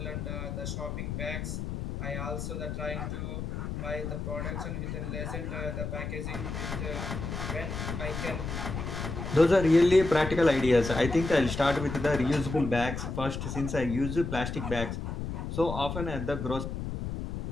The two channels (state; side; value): noise; left; rumble, 5 dB below the sound